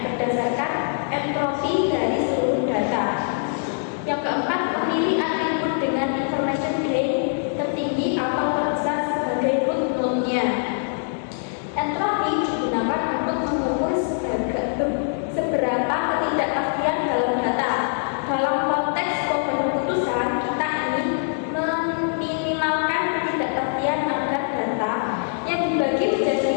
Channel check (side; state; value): right; silent; digital silence